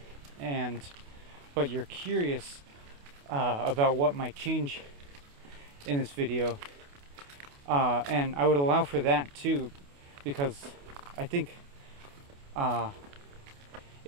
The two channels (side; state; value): left; late; 28 ms